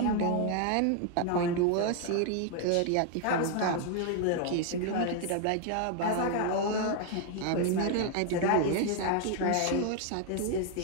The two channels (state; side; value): different; both; correlation 0.00